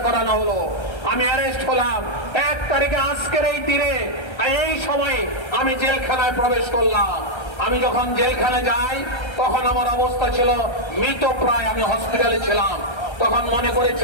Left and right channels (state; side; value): late; right; 1.3 ms